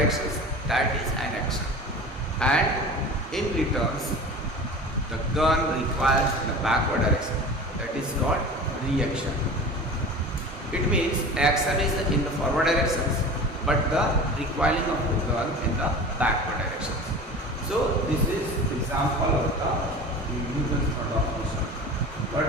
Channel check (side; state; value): both; normal; correlation 0.36